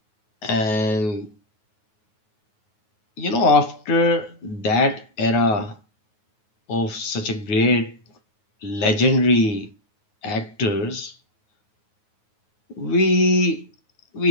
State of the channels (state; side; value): late; right; 9.4 ms